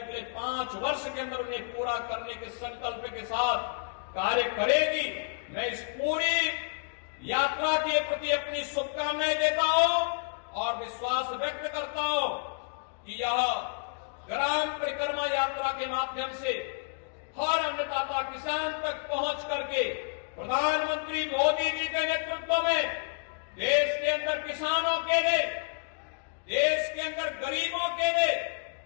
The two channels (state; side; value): silent; right; digital silence